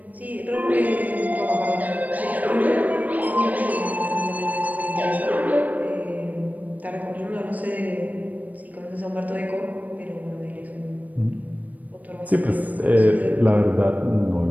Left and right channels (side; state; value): left; late; 0.076 ms